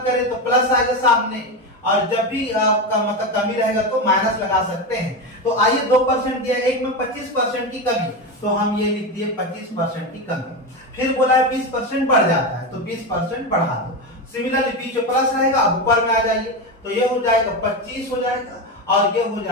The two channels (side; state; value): both; normal; correlation 0.16